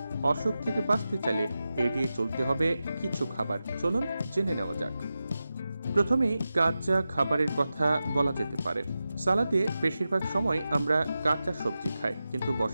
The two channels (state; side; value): inverted; both; correlation -0.92